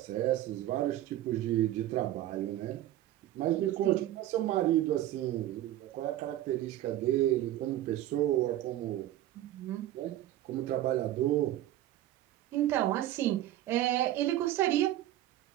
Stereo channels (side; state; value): left; quieter; 13.9 dB